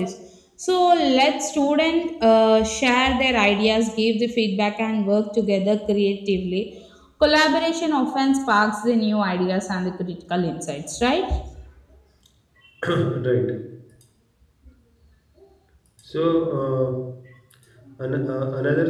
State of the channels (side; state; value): both; identical; correlation 1.00